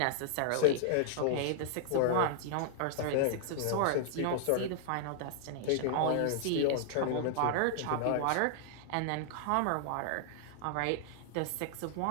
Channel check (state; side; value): different; both; correlation 0.00